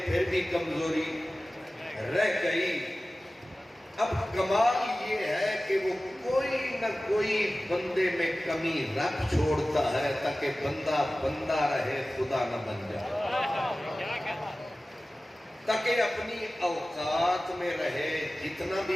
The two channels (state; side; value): normal; both; correlation 0.96